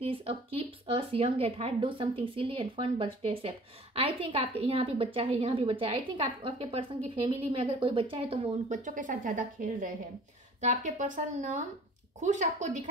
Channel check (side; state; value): both; normal; correlation 0.48